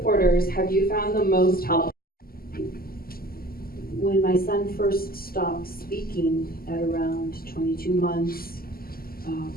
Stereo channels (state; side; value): late; right; 0.43 ms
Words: have you found the most helpful? When my son first stopped speaking at around 22 months,